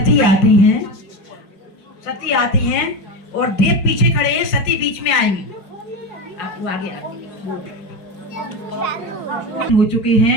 आती हैं और देव पीछे खड़े हैं, सती बीच में आएंगी। आपको आगे हो चुके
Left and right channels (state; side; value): late; right; 5.5 ms